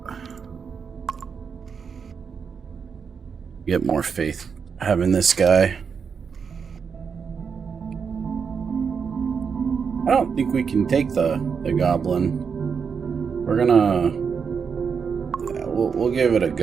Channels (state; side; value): quieter; left; 6.2 dB